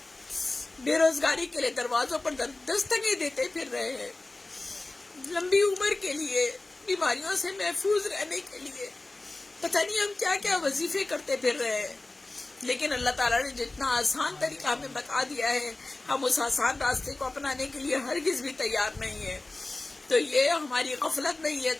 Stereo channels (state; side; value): quieter; right; 3.0 dB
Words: بے روزگاری کے لیے دروازوں پر دستکیں دیتے پھر رہے ہیں، لمبی عمر کے لیے، بیماریوں سے محفوظ رہنے کے لیے پتہ نہیں ہم کیا کیا وظیفے کرتے پھر رہے ہیں۔ لیکن اللہ تعالیٰ نے جتنا آسان طریقہ ہمیں بتا دیا ہے، ہم اس آسان راستے کو اپنانے کے لیے ہرگز بھی تیار نہیں ہے۔ تو یہ ہماری غفلت نہیں ہے